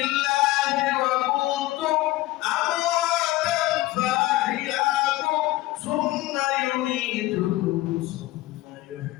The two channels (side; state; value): right; quieter; 17.7 dB